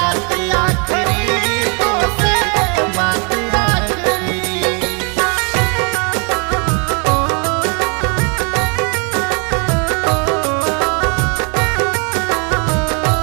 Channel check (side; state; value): left; quieter; 34.9 dB